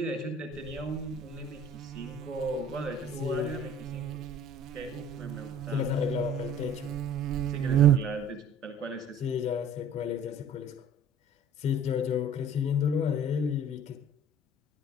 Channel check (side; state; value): both; normal; correlation 0.48